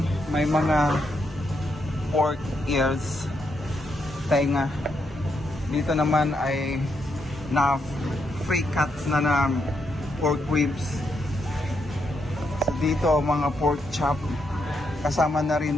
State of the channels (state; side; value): normal; both; correlation 0.80